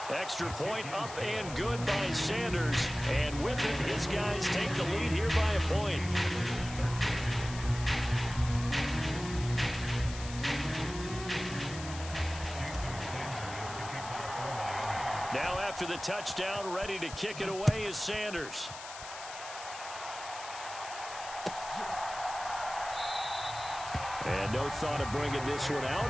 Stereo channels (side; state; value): left; noise; hiss, 12 dB below the sound